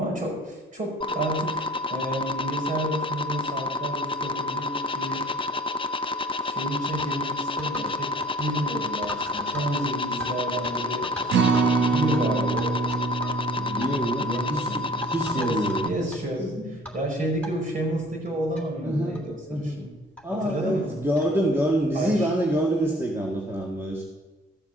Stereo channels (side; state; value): both; normal; correlation 0.50